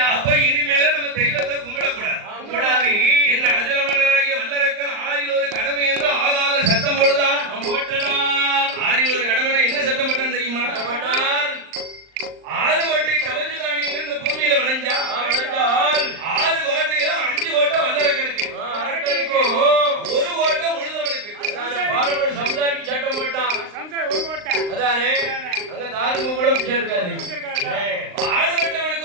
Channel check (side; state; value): left; late; 39 ms